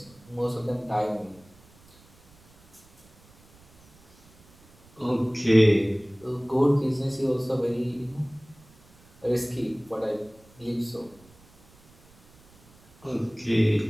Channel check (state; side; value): noise; right; rumble, 28 dB below the sound